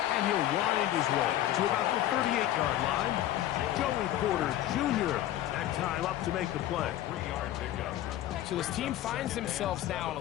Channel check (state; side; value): quieter; right; 13.1 dB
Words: And he'll wind his way to about the 38-yard line. Joey Porter Jr. that time up to make the play. So this team finds themselves now in a